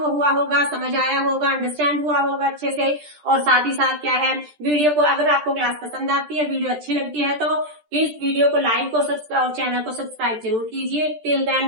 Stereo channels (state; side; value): late; left; 13 ms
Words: हुआ होगा, समझ आया होगा, अंडरस्टैंड हुआ होगा अच्छे से। और साथ ही साथ क्या है, वीडियो को, अगर आपको क्लास पसंद आती है, वीडियो अच्छी लगती है, तो प्लीज वीडियो को लाइक और चैनल को सब्सक्राइब जरूर कीजिए। Till